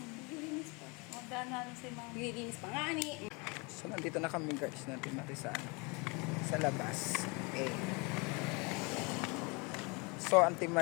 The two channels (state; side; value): quieter; right; 29.4 dB